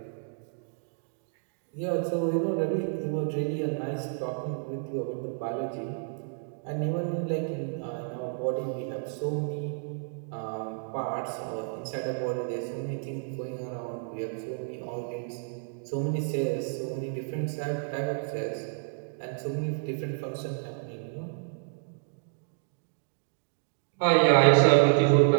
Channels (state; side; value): silent; left; digital silence